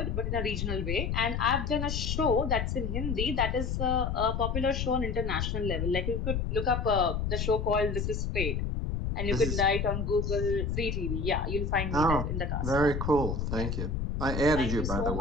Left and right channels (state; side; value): noise; left; rumble, 1 dB below the sound